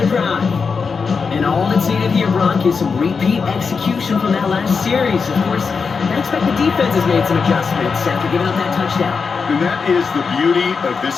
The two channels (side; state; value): right; quieter; 5.3 dB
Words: drive. And all that's needed here, Brock, is some repeat execution from that last series. Of course, I expect the defense has made some adjustments after giving up that touchdown. And that is the beauty of